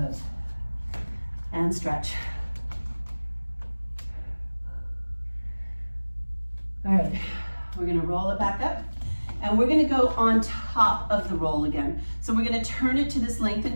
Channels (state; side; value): inverted; both; correlation -1.00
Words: And stretch. All right, we're gonna roll it back up, and we're gonna go on top of the roll again. So we're gonna turn it to this